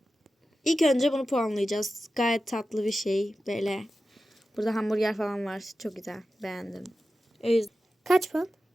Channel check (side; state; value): both; normal; correlation 0.93